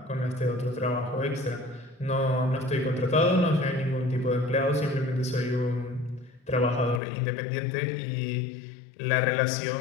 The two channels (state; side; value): drops out; right; at 7.0 s